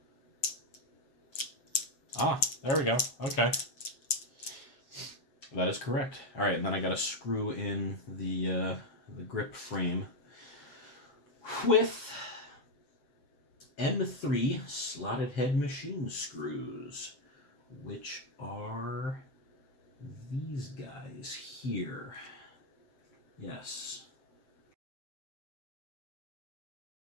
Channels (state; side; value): late; right; 7.3 ms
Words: Ah, there we go. Okay. That is correct. All right, and then I got to screw in the grip frame with M3 slotted head machine screws, which are these guys here. Yes.